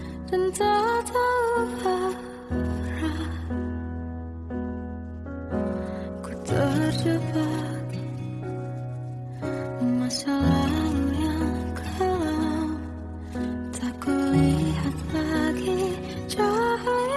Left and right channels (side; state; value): both; identical; correlation 1.00